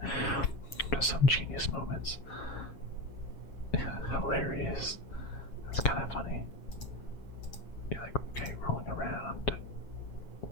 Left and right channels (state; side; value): late; right; 7.4 ms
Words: There's some genius moments. Hilarious. That's kind of